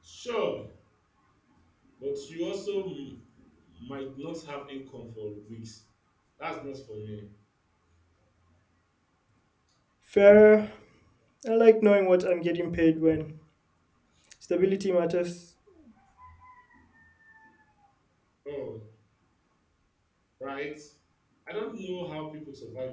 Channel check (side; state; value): both; identical; correlation 1.00